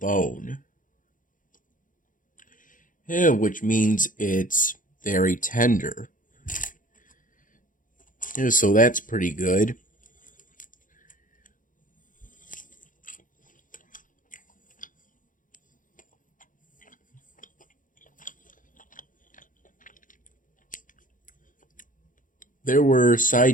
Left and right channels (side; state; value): right; late; 0.39 ms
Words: Which means it's very tender. So that's pretty good. There were